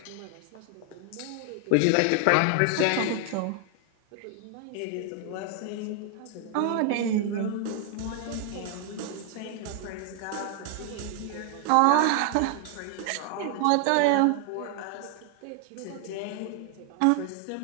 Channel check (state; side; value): different; both; correlation 0.00